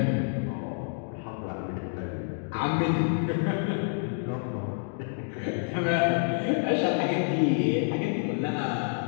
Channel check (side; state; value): right; silent; digital silence